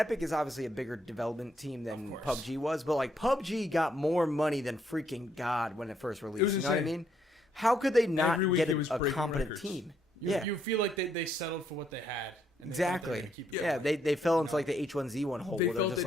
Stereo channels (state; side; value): normal; both; correlation 0.73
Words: is obviously a bigger development team than Of course. PUBG was, but like PUBG got more money than freaking God when it first released. was You know what I insane. mean? How could they not Every week get it was a breaking competent records. team? You feel like they settled for what they had. And they thought they were Exactly. gonna keep it Yeah, going. they fell into like the H1Z1 hole They where they're felt just